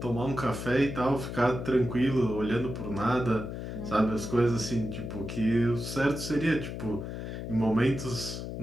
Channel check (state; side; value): noise; left; hum, 7 dB below the sound